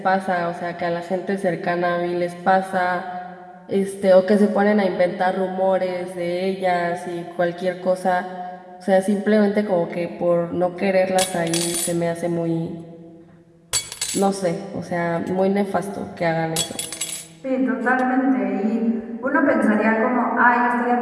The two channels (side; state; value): both; identical; correlation 1.00